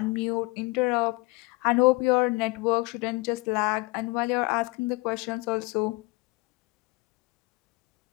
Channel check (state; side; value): quieter; right; 24.0 dB